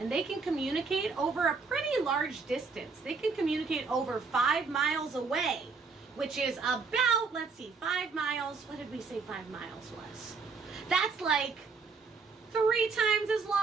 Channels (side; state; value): left; quieter; 4.7 dB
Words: they can communicate over a pretty large distance. They can communicate over 5 miles away, which is about, let's see, 5 miles. What did we say 5 miles was? That's like 3 times as